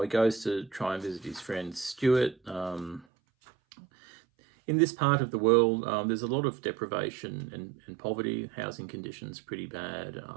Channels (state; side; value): drops out; left; at 3.1 s